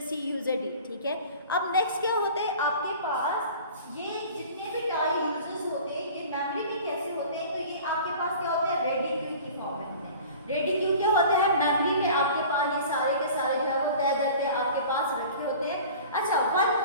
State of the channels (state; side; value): inverted; both; correlation -0.42